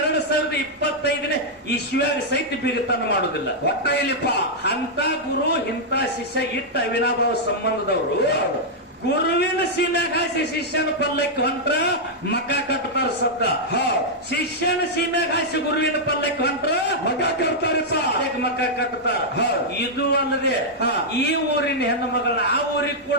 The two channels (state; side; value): normal; both; correlation -0.05